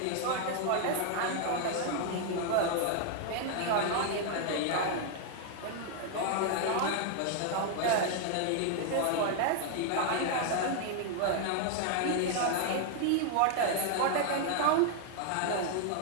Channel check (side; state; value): both; different; correlation 0.00